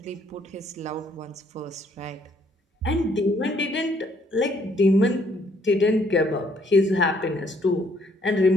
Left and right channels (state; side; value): normal; both; correlation 0.67